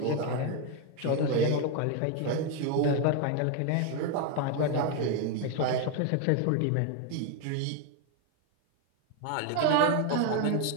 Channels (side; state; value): both; different; correlation 0.01